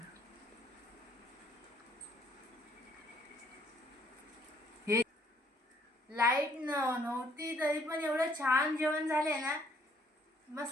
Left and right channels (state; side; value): normal; both; correlation 0.64